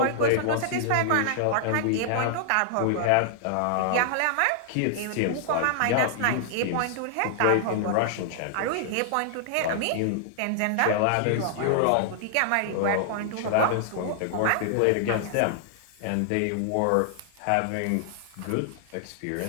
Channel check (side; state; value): both; different; correlation -0.01